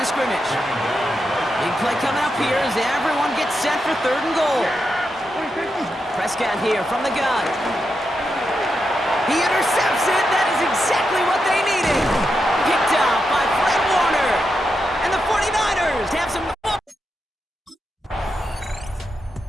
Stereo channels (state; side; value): normal; both; correlation 0.86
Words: scrimmage. Big play coming up here as everyone gets set for third and goal. Prescott here from the gun. He intercepts it. That is exactly what they needed. Picked off by Fred Warner. And the 49ers have some...